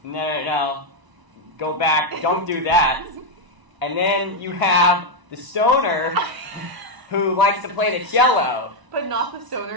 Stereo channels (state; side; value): late; left; 1.0 ms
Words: no, go back, don't do that. And then you have the stoner who likes to play the cello. But not the